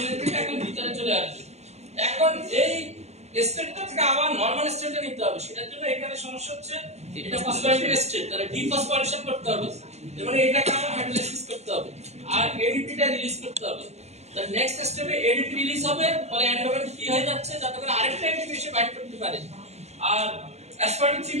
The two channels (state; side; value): late; left; 0.32 ms